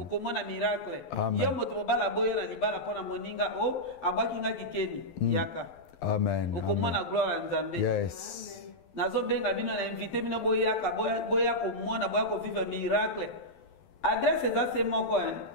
miracle. Amen. Yo moto mobala boyo na libala pona moninga o abaki nga kikeni yaka. Amen. Okomona gloire ya Nzambe. Yes. Nazo benga bino na invité bino boyaka boya ko mona boya ko vivre miracle. Adresse eza se moko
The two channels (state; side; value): late; right; 12 ms